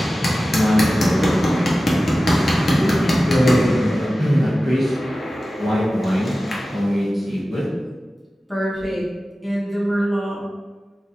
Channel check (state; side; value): normal; both; correlation 0.95